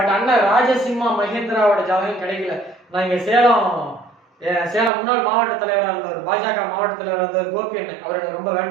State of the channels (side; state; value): left; drops out; at 4.9 s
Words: அண்ணன் ராஜசிம்மா மகேந்திராவோட ஜாதகம் கிடைக்கல. நான் இங்க சேலம் முன்னாள் மாவட்ட தலைவராக இருந்தவர், பாஜக மாவட்ட தலைவராக இருந்தவர் கோபி அண்ணன், அவர் எனக்கு ரொம்ப